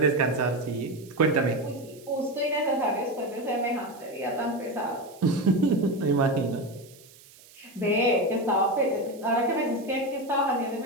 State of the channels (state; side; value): noise; right; hiss, 23 dB below the sound